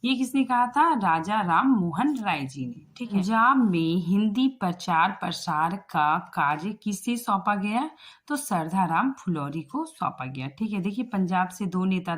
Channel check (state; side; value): identical; both; correlation 1.00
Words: ये किसने कहा था? राजा राम मोहन राय जी ने। ठीक है। पंजाब में हिंदी प्रचार प्रसार का कार्य किसे सौंपा गया? तो सरदाराम फुलौरी को सौंपा गया। ठीक है। देखिए पंजाब से 2 नेता